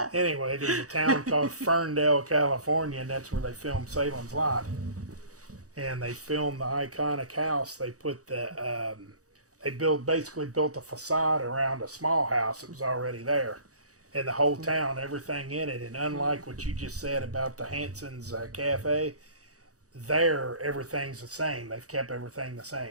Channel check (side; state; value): left; late; 0.66 ms